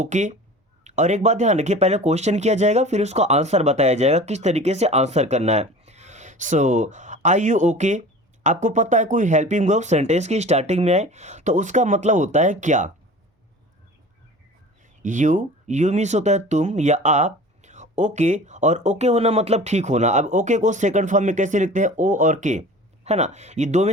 और एक बात ध्यान रखिए, पहले क्वेश्चन किया जाएगा फिर उसका आंसर बताया जाएगा किस तरीके से आंसर करना है। Are you okay. आपको पता है कोई हेल्पिंग वर्ब सेंटेंस की स्टार्टिंग में आए तो उसका मतलब होता है क्या। यू मीन्स होता है तुम या आप। ओके, और ओके होना मतलब ठीक होना। अब ओके को सेकंड फॉर्म में कैसे लिखते हैं, ओ और के, है ना। ये दो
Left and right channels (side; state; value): both; normal; correlation 0.40